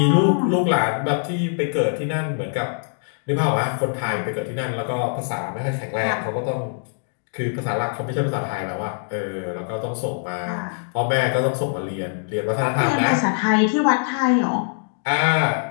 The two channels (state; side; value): silent; right; digital silence